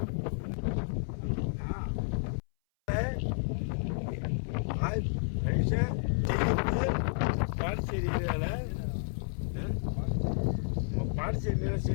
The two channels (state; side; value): silent; right; 57 dB below the other